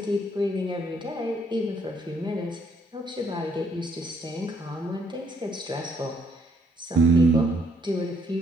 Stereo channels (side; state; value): both; normal; correlation 0.69